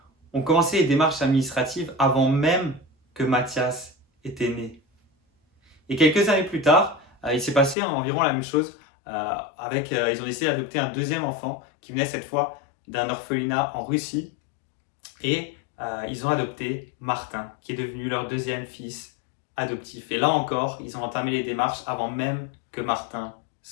ont commencé les démarches administratives avant même que Mathias était né. Et quelques années plus tard, il s'est passé environ la même chose. Ils ont décidé d'adopter un deuxième enfant qui venait cette fois d'un orphelinat en Russie. Et ils ont adopté Martin, qui est devenu leur deuxième fils adoptif. Et là encore, ils ont entamé les démarches avant même que Martin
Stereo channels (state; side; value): drops out; right; at 7.8 s